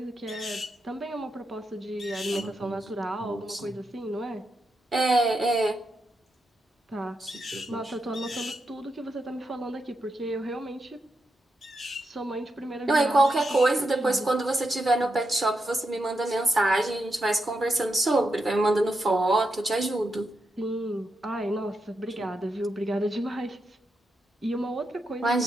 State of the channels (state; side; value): normal; both; correlation 0.85